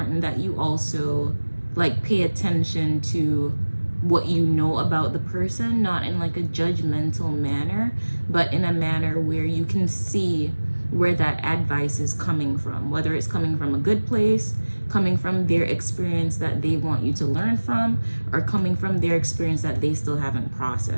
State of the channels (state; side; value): inverted; both; correlation -1.00